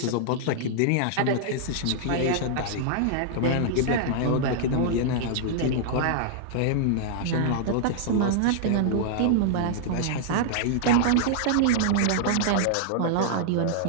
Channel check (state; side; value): different; both; correlation -0.01